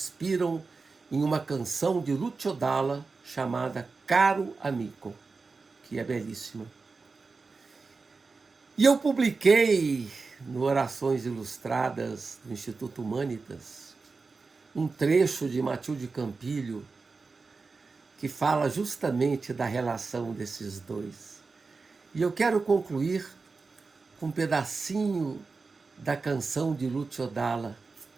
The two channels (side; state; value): left; quieter; 4.3 dB